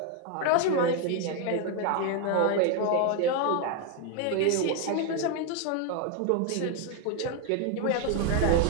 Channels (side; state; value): both; different; correlation 0.01